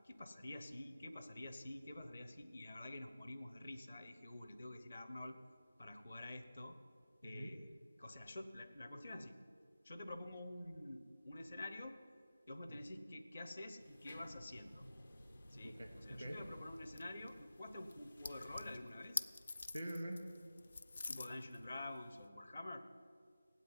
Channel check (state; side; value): inverted; both; correlation -0.94